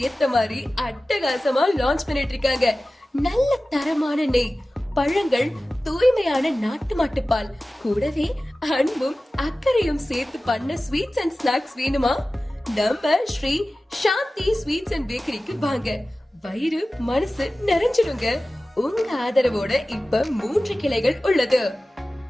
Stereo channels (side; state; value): both; normal; correlation 0.96